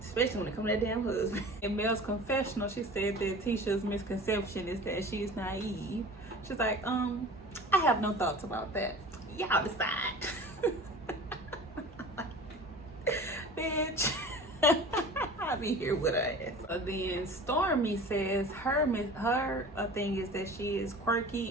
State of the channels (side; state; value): both; normal; correlation 0.40